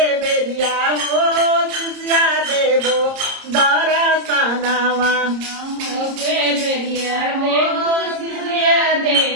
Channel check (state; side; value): late; left; 30 ms